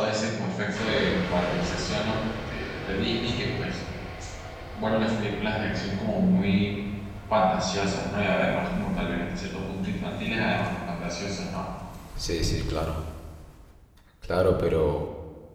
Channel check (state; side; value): identical; both; correlation 1.00